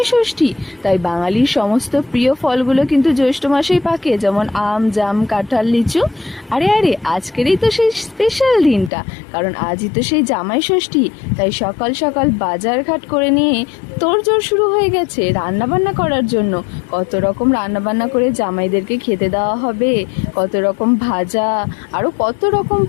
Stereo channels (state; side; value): drops out; right; at 8.9 s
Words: ষষ্ঠী। তাই বাঙালির সমস্ত প্রিয় ফলগুলো কিন্তু জ্যৈষ্ঠ মাসেই পাকে, যেমন আম, জাম, কাঁঠাল, লিচু। আরে আরে, আজকেরই তো সেই স্পেশাল দিনটা, কারণ আজই তো সেই জামাই ষষ্ঠী। তাই সকাল সকাল বাজার ঘাট করে নিয়ে তোড়জোড় শুরু হয়ে গেছে রান্না বান্না করার জন্য। কত রকম রান্না বান্না করে জামাইদেরকে খেতে দেওয়া হবে, কত রকম ভাজা, আরও কত রকম